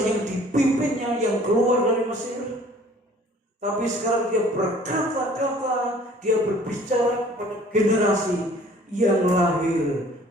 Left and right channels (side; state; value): both; normal; correlation 0.53